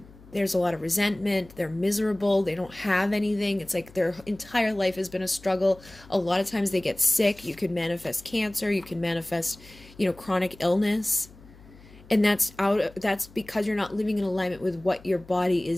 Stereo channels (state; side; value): noise; left; hum, 22 dB below the sound